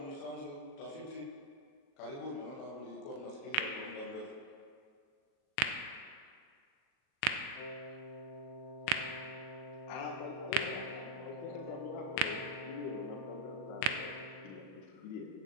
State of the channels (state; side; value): late; right; 37 ms